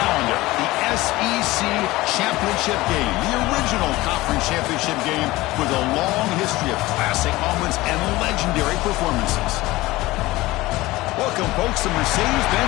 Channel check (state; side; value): quieter; right; 19.1 dB